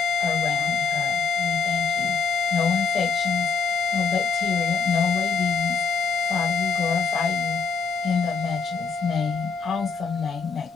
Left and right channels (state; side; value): quieter; right; 5.2 dB